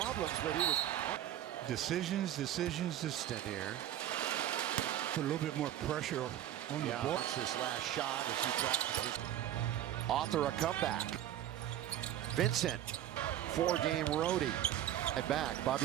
but he was Decisions. here. Put a little bit more pressure on the ball. Wants this last shot as he practices. Author a comeback. Vincent, 4-game roadie. At back,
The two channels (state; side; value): quieter; left; 12.0 dB